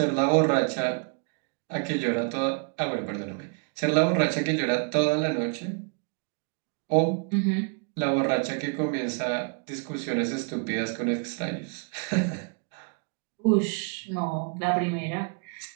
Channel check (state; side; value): quieter; left; 38.7 dB